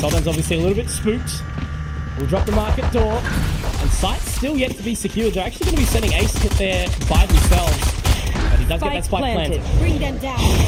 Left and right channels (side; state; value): both; identical; correlation 1.00